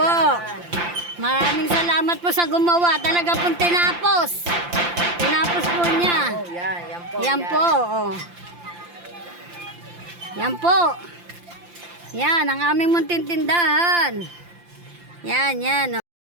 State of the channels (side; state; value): left; late; 5.8 ms